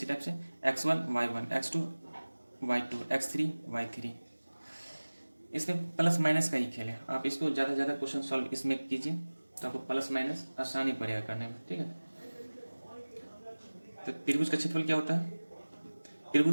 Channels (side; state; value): both; inverted; correlation -1.00